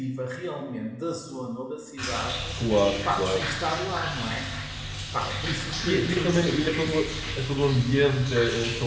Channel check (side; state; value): both; identical; correlation 1.00